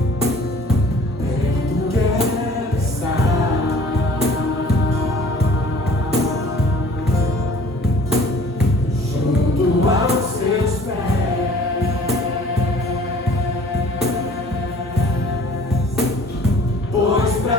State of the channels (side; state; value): both; normal; correlation 0.51